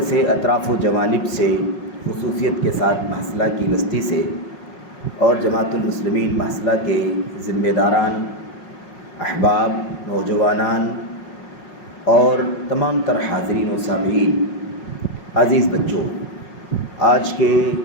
سے اطراف و جوانب سے خصوصیت کے ساتھ محصلہ کی بستی سے اور جماعت المسلمین محصلہ کے ذمہ داران، احباب، نوجوانان اور تمام تر حاضرین و سامعین، عزیز بچوں، آج کے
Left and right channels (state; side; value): late; right; 5.5 ms